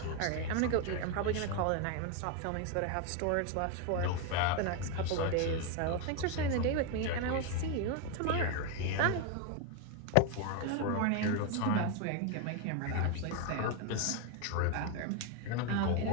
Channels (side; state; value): both; different; correlation 0.01